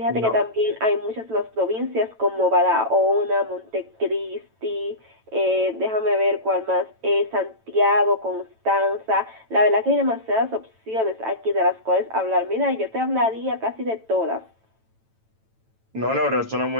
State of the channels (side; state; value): left; late; 9.0 ms